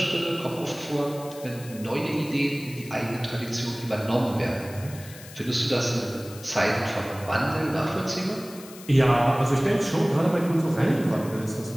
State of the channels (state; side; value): noise; left; hiss, 18 dB below the sound